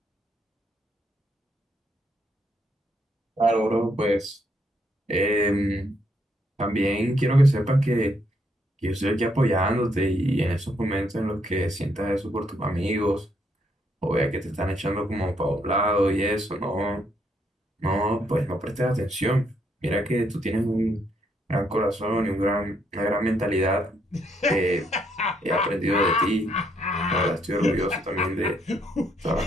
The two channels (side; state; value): both; normal; correlation 0.73